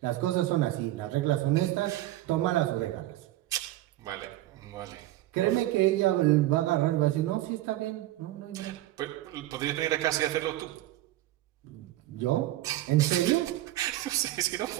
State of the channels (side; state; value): left; quieter; 15.5 dB